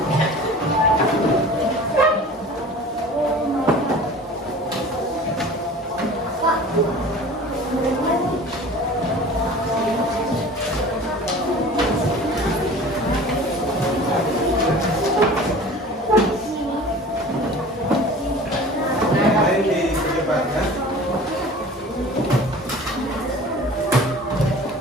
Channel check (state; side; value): normal; both; correlation 0.41